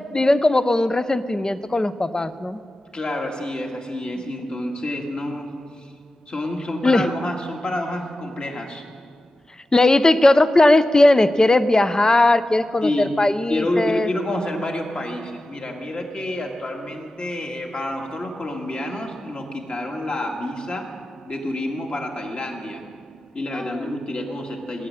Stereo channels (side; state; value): both; normal; correlation 0.93